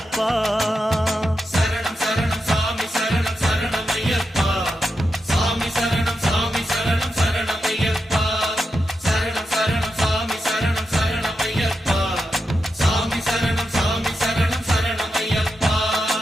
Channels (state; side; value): normal; both; correlation 0.87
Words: சரணம் சரணம் சாமி சரணம் சரணம் ஐயப்பா சாமி சரணம் சாமி சரணம் சரணம் ஐயப்பா சரணம் சரணம் சாமி சரணம் சரணம் ஐயப்பா சாமி சரணம் சாமி சரணம் சரணம் ஐயப்பா